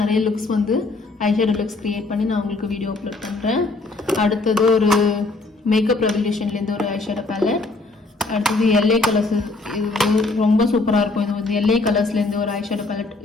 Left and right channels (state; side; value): quieter; right; 3.4 dB